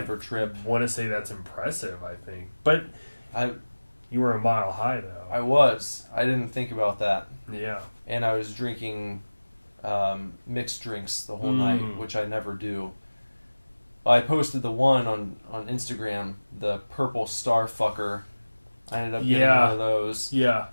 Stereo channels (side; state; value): both; inverted; correlation -1.00